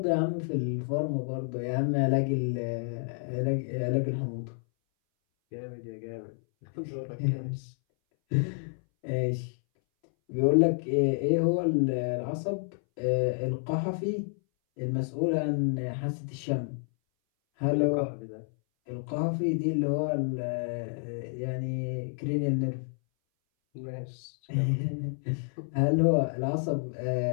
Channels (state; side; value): silent; right; 58 dB below the other